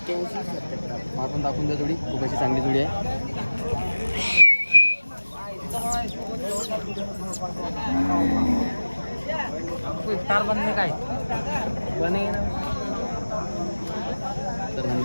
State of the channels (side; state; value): both; inverted; correlation -1.00